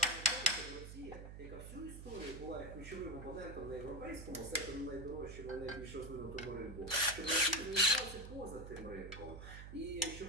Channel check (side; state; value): right; noise; hum, 11 dB below the sound